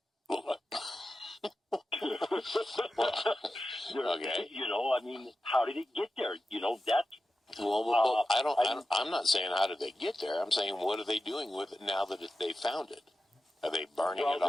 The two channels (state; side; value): normal; both; correlation 0.92